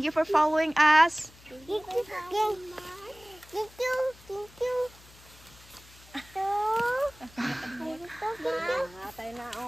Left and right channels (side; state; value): left; noise; hum, 24 dB below the sound